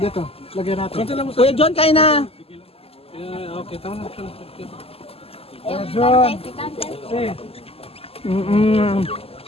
lagyan natin. Kuya John, kain na. Okay, tama na. John.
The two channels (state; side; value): late; right; 0.28 ms